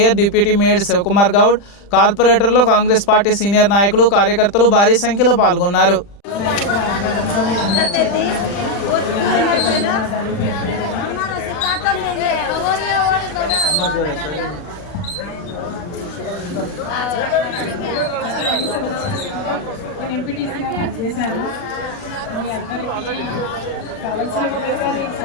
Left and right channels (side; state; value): right; late; 40 ms